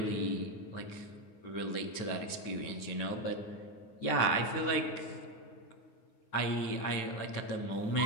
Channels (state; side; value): late; right; 9.5 ms